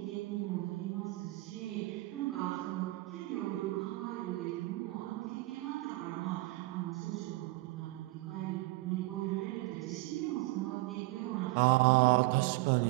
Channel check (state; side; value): quieter; left; 20.5 dB